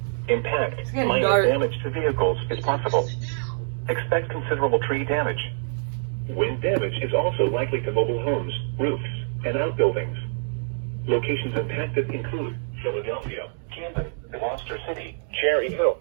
Impact, minor damage to vehicles is possible. Expect considerable tree damage. Wind damage is also likely to mobile homes, roofs, and outbuildings. Locations impacted include Philadelphia, Camden, Gloucester City, Cherry Hill,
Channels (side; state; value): left; silent; digital silence